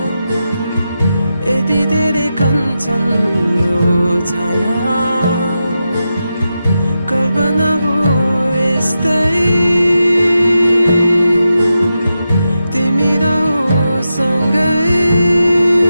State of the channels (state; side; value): inverted; both; correlation -0.89